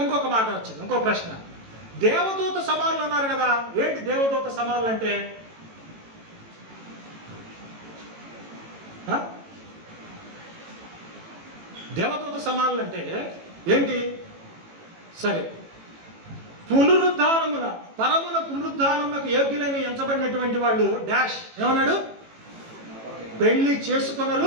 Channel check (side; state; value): left; late; 18 ms